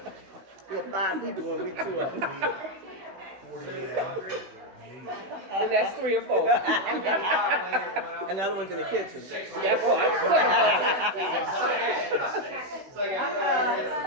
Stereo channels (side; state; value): left; late; 16 ms